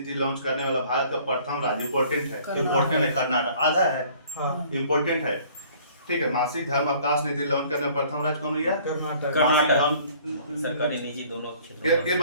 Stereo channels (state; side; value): inverted; both; correlation -0.54